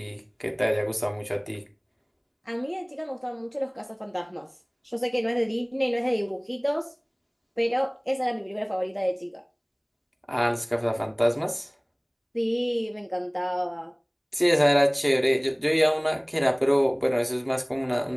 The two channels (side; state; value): both; identical; correlation 1.00